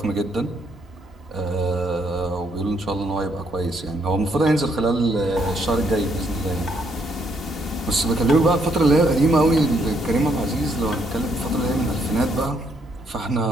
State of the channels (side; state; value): both; normal; correlation 0.72